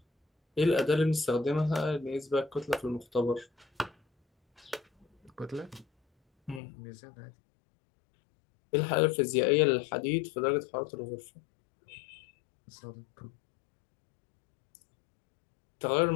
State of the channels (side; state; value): right; drops out; at 6.6 s